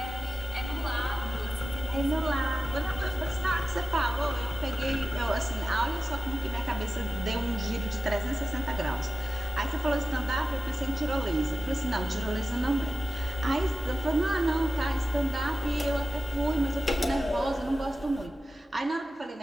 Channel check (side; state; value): both; normal; correlation 0.94